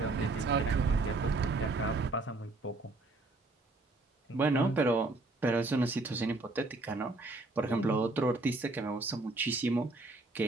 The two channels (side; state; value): left; quieter; 3.2 dB